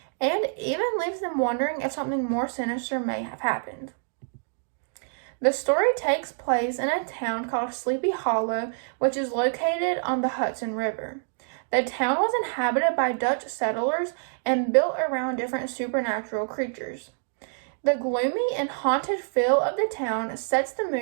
and even leaves them wondering if something more sinister may have happened. The story takes place in a town called Sleepy Hollow, which is located on the Hudson River. The town was inhabited by Dutch settlers and built around different supernatural creatures. The gloomy and haunted feel of the town sets the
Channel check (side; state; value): left; silent; digital silence